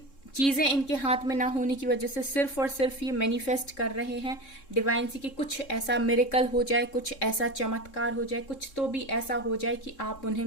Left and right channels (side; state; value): right; late; 3.7 ms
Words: चीज़ें इनके हाथ में ना होने की वजह से सिर्फ और सिर्फ ये मैनिफेस्ट कर रहे हैं डिवाइन से कि कुछ ऐसा मिरेकल हो जाए, कुछ ऐसा चमत्कार हो जाए, कुछ तो भी ऐसा हो जाए कि आप उन्हें